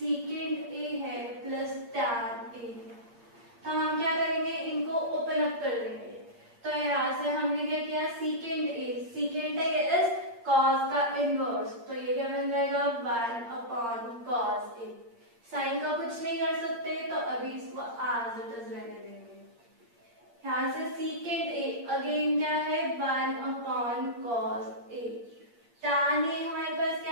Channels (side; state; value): left; late; 8.6 ms